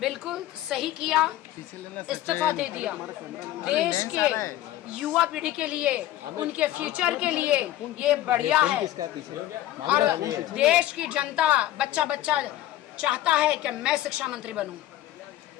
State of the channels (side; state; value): right; quieter; 14.1 dB